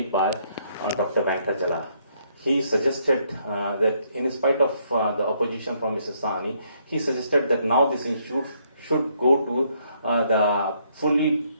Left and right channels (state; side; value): inverted; both; correlation -0.71